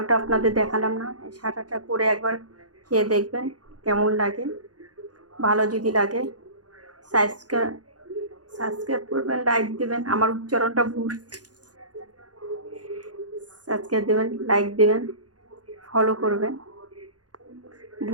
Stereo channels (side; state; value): left; late; 0.69 ms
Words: আপনাদের দেখালাম না। শাটারটা করে একবার খেয়ে দেখবেন কেমন লাগে। ভালো যদি লাগে সাবস্ক্রাইব করবেন, লাইক দেবেন। আমার উচ্চারণটা ভুল, সাবস্ক্রাইব দেবেন, লাইক দেবেন, ফলো করবেন।